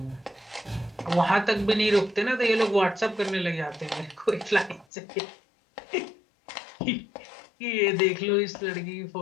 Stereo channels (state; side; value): drops out; right; at 4.9 s